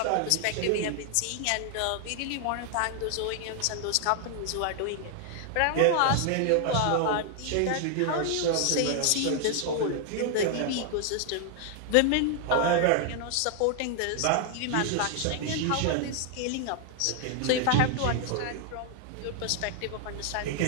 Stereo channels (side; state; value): both; different; correlation 0.00